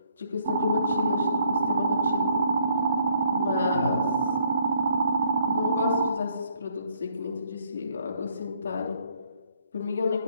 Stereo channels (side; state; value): both; inverted; correlation -0.66